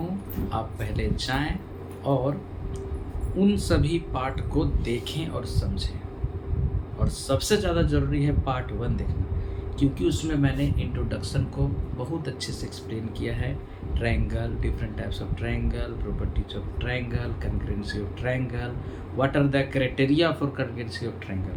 आप पहले जाएं और उन सभी पार्ट को देखें और समझें। और सबसे ज़्यादा ज़रूरी है पार्ट 1 देखना, क्योंकि उसमें मैंने इंट्रोडक्शन को बहुत अच्छे से एक्सप्लेन किया है। Triangle, different types of triangle, properties of triangle, congruency of triangle, what are the criteria for congruency of triangle.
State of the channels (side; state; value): both; identical; correlation 1.00